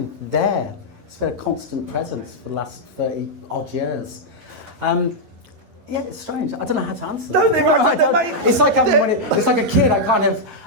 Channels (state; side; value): late; left; 11 ms